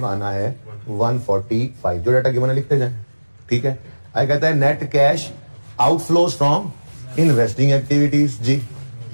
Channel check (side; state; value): both; inverted; correlation -1.00